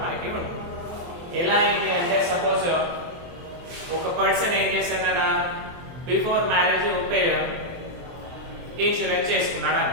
మనకి ఉంటుంది. ఎలా అయింది అంటే, సపోజ్ ఒక పర్సన్ ఏం చేశాడన్నా, బిఫోర్ మ్యారేజ్ ఇన్సూరెన్స్ చేసుకున్నాడు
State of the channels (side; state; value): left; late; 23 ms